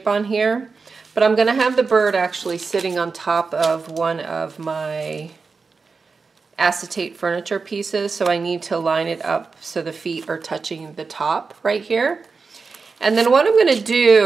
on here. But I'm going to have the bird actually sitting on top of one of my acetate furniture pieces, so I need to line it up so the feet are touching the top right here. And then what I'm going to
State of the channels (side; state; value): left; quieter; 4.6 dB